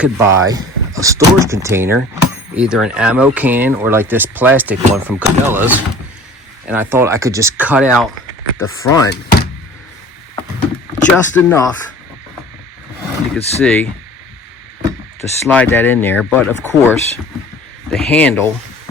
buy a storage container, either an ammo can or like this plastic one from Cabela's, and I thought I could just cut out the front just enough, you can see, to slide that in there. But of course, the handle,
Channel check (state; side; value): normal; both; correlation 0.46